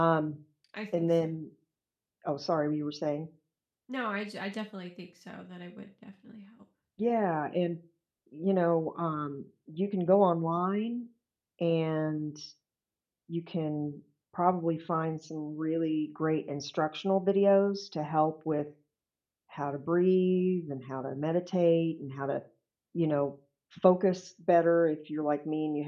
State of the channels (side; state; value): both; identical; correlation 1.00